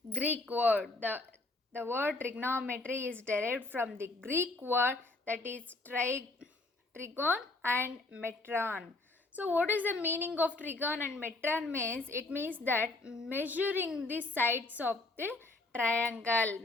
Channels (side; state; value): right; quieter; 3.1 dB